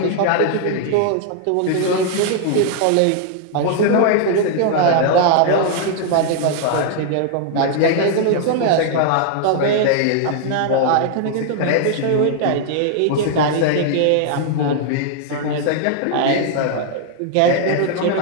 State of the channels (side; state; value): both; different; correlation 0.00